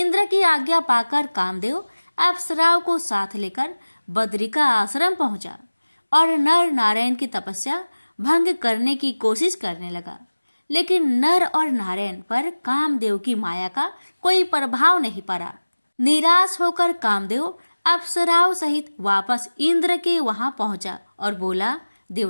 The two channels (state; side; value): inverted; both; correlation -1.00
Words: की आज्ञा पाकर कामदेव अप्सराओं को साथ लेकर बद्रिका आश्रम पहुंचा और नर नारायण की तपस्या भंग करने की कोशिश करने लगा। लेकिन नर और नारायण पर कामदेव की माया का कोई प्रभाव नहीं पड़ा। निराश होकर कामदेव अप्सराओं सहित वापस इंद्र के वहां पहुंचा और बोला,